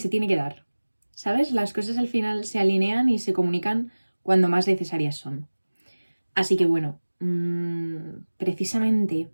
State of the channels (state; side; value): inverted; both; correlation -1.00